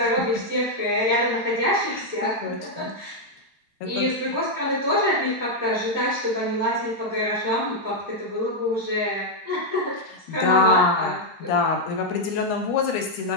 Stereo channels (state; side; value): normal; both; correlation -0.01